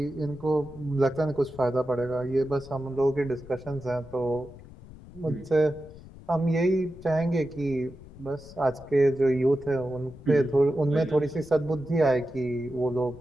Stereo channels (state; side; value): noise; left; rumble, 18 dB below the sound